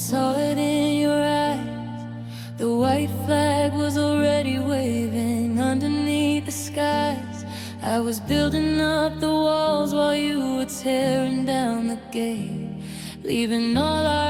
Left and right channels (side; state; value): both; identical; correlation 1.00